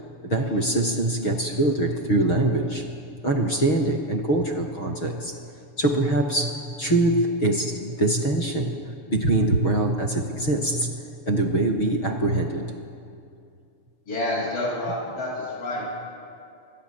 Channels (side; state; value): right; late; 6.3 ms